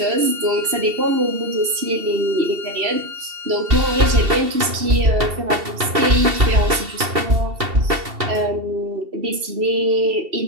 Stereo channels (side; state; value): left; late; 2.7 ms